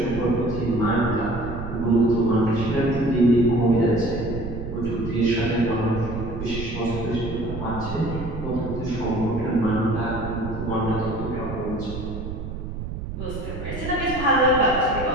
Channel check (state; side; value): noise; right; rumble, 7 dB below the sound